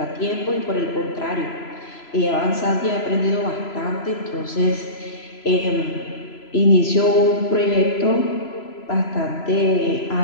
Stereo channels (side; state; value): right; late; 3.0 ms